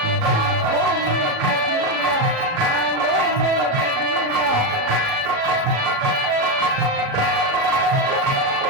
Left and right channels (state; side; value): late; left; 37 ms